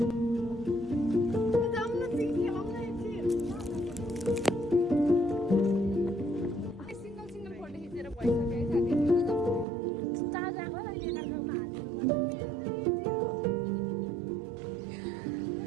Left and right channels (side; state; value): left; drops out; at 9.7 s